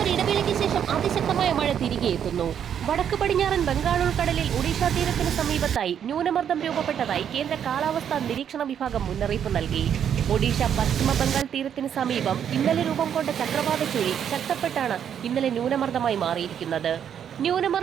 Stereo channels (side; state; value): left; quieter; 8.8 dB